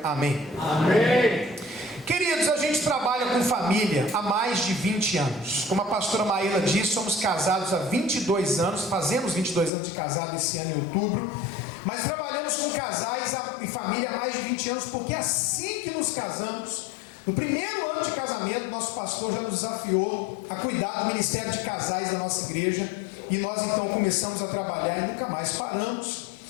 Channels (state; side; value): drops out; right; at 9.7 s